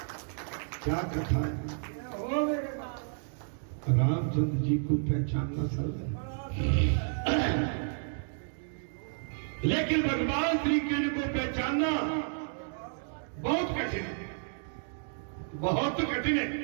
क्या कथा है? रामचंद्र जी को पहचानना सरल है, लेकिन भगवान श्री कृष्ण को पहचानना बहुत कठिन है। बहुत कठिन है।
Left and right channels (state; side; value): silent; left; digital silence